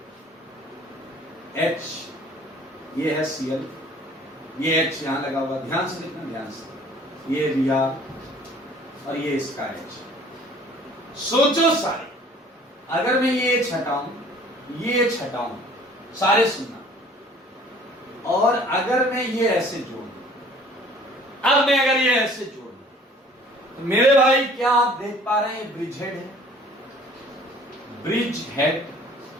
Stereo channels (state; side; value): normal; both; correlation 0.52